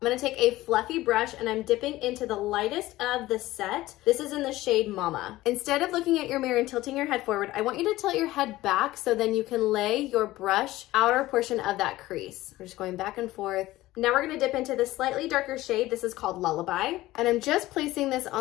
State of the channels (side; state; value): right; quieter; 17.0 dB